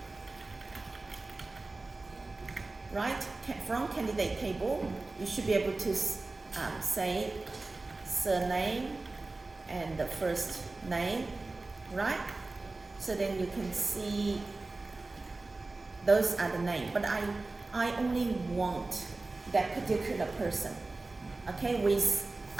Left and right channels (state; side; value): quieter; left; 3.3 dB